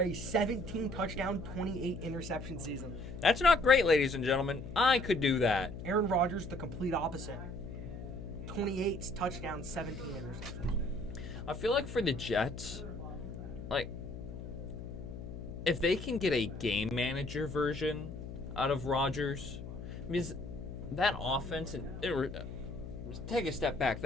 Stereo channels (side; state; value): left; noise; hum, 9 dB below the sound